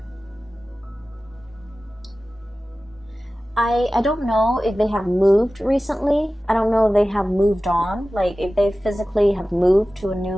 I don't know if they have moved recently. I don't know if they have moved on, like if they physically have moved to a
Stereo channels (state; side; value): normal; both; correlation 0.96